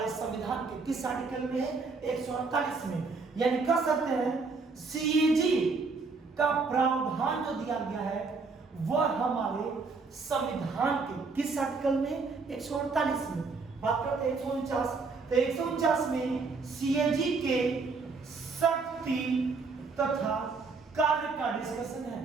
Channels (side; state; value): left; quieter; 4.4 dB